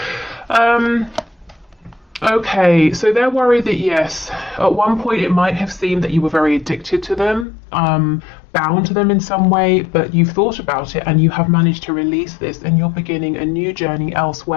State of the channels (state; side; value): drops out; right; at 7.5 s